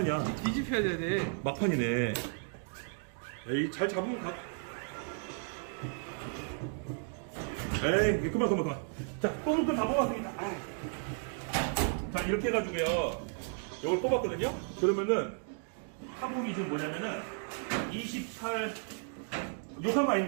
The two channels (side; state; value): left; silent; 55 dB below the other